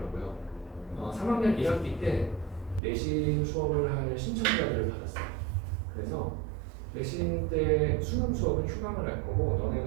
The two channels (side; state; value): left; drops out; at 2.8 s